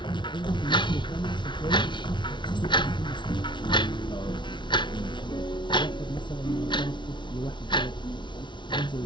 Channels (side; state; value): right; late; 0.23 ms